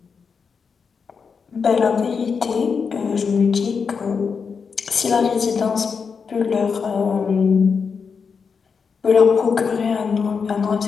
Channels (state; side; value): quieter; right; 5.7 dB